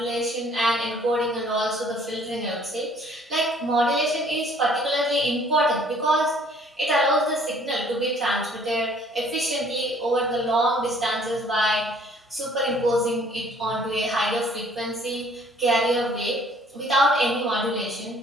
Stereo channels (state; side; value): normal; both; correlation 0.58